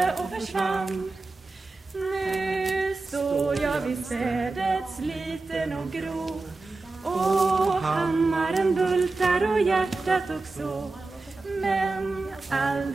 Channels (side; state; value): left; quieter; 3.5 dB